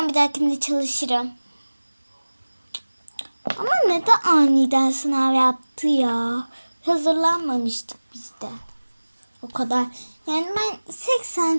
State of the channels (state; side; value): inverted; both; correlation -1.00